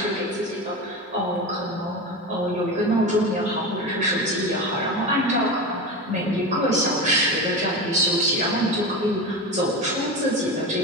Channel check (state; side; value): normal; both; correlation 0.24